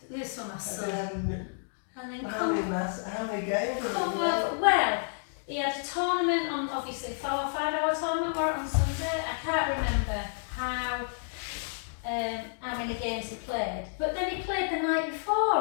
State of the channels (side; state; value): right; silent; digital silence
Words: this one, my son. And then How many games? come over. Well, he had a tournament on, obviously, a 5-hour tournament or on Sunday. I can't remember how many games he played. But then he played the night